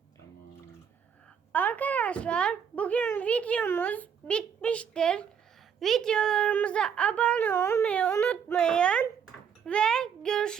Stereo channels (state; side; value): quieter; left; 7.5 dB